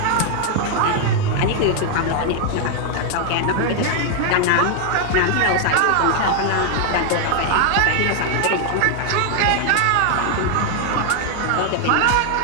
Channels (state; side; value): different; both; correlation 0.00